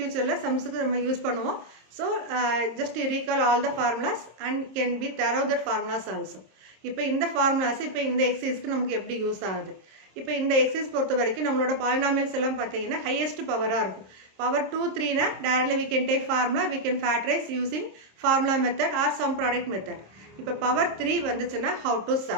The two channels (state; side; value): late; left; 26 ms